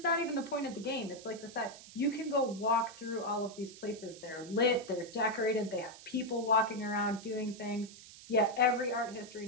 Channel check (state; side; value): noise; right; hiss, 17 dB below the sound